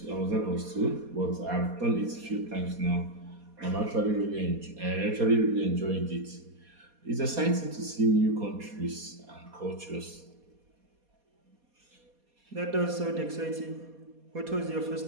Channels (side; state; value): left; late; 4.2 ms